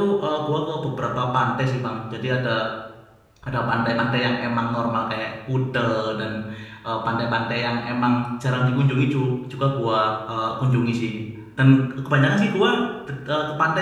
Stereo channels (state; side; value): identical; both; correlation 1.00